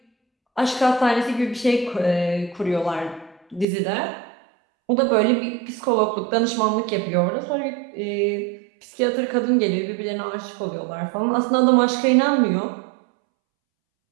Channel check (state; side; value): drops out; left; at 3.7 s